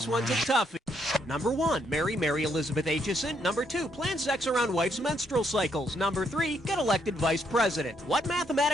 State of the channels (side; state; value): both; normal; correlation 0.73